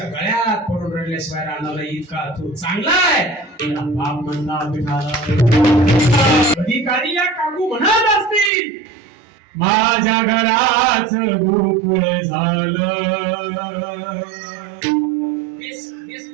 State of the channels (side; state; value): left; drops out; at 8.5 s